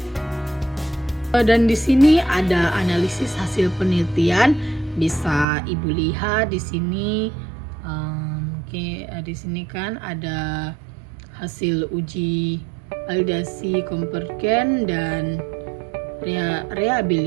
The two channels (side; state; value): left; drops out; at 5.5 s